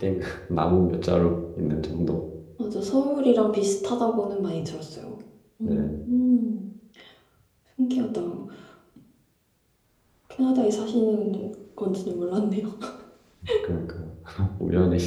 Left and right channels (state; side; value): identical; both; correlation 1.00